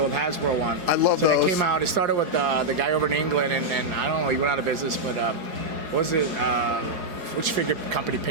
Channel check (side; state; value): left; late; 4.7 ms